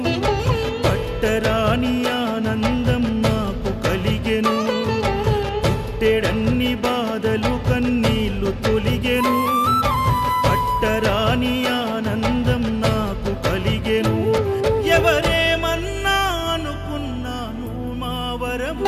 పట్టరాని ఆనందం నాకు కలిగెను. పుట్టెడన్ని బాధలు కన్నీళ్లు తొలిగెను, పట్టరాని ఆనందం నాకు కలిగెను. ఎవరేమన్నా అనుకున్నాను మా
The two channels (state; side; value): identical; both; correlation 1.00